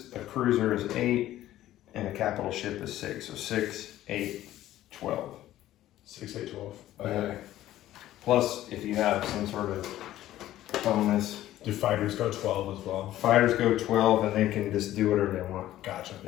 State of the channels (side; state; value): right; quieter; 13.9 dB